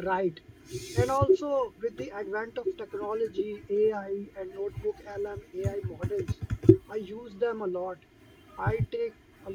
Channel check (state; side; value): identical; both; correlation 1.00